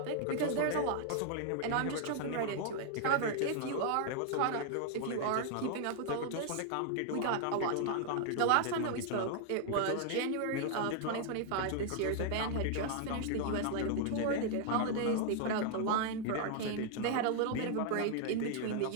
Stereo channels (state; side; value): different; both; correlation 0.00